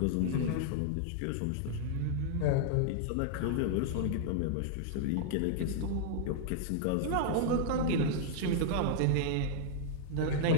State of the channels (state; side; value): different; both; correlation -0.01